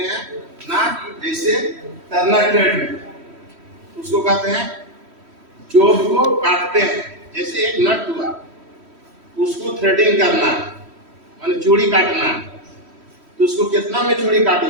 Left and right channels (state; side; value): late; left; 3.1 ms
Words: हैं ना। जैसे टर्नर ट्रेड में उसको कहते हैं जोब को काटते हैं, जैसे एक नट हुआ उसको थ्रेडिंग करना माने चूड़ी काटना, तो उसको कितना में चूड़ी